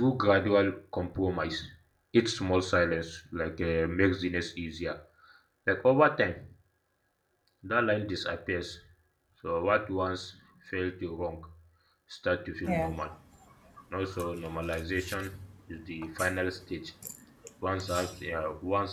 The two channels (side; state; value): both; identical; correlation 1.00